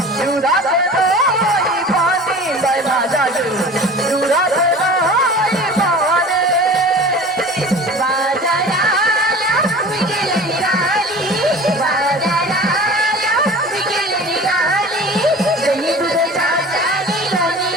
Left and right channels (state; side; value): normal; both; correlation 0.39